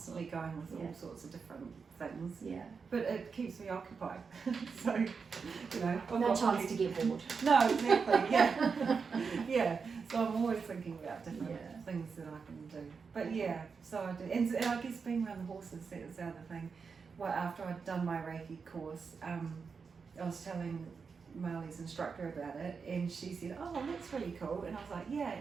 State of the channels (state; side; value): quieter; left; 5.4 dB